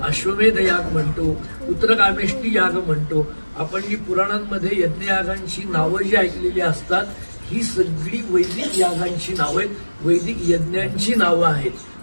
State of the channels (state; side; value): inverted; both; correlation -1.00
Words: अश्वमेध याग म्हणतो, उत्तरकामेष्टी याग म्हणतो. आपण जी पुराणांमध्ये यज्ञयागांची नावं जी ऐकलेली असतात ही सगळी वैदिक यागांची नावं आहेत, वैदिक यज्ञांची नावं